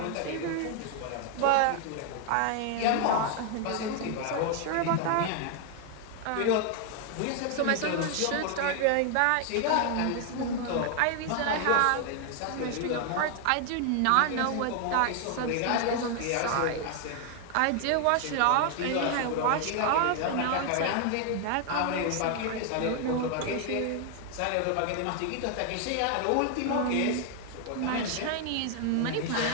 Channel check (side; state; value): both; different; correlation 0.00